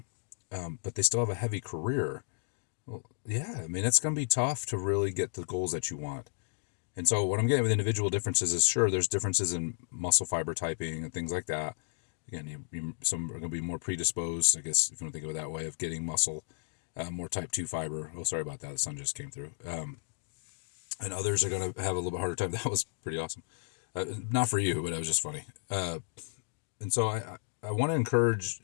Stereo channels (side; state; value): right; silent; digital silence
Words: but they still have a heavy career. Well, yeah, I mean, it's going to be tough to really get the goals that you want. And so what I'm getting with individual differences is, sure, there's differences in muscle fiber typing and things like that. Again, some are going to be more predisposed, I guess, if you want to think of it that way, of getting muscle, more type 2 fiber. Oh, sorry about that. The sun just came through. And others are going to have a little bit harder time. That was pretty awesome. Not for you, but it was just funny. And so I want to encourage